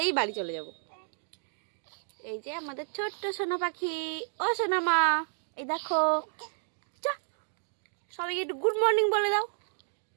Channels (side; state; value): left; silent; digital silence